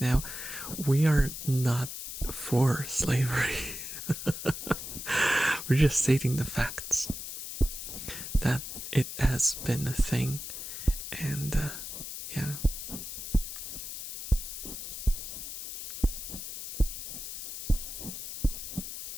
we are not for slavery. We're just stating the facts that it has been a thing, and yeah.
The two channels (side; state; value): left; noise; hiss, 8 dB below the sound